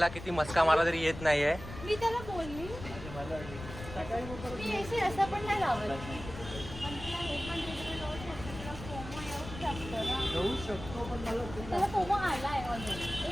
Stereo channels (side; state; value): left; noise; rumble, 11 dB below the sound